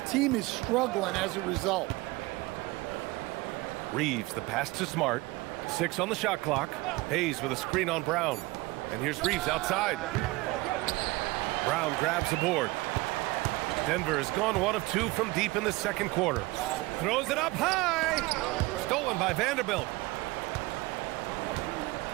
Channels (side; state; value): left; quieter; 21.4 dB